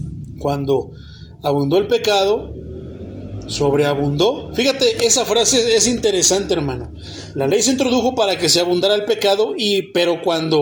Cuando abundó el pecado, sobreabundó. Fíjate, esa frase es interesante, hermano. La ley se introdujo para que se abundara el pecado, pero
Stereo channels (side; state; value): both; identical; correlation 1.00